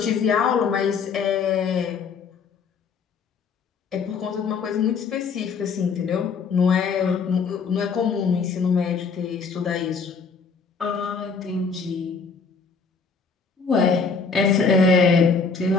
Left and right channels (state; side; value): quieter; right; 5.2 dB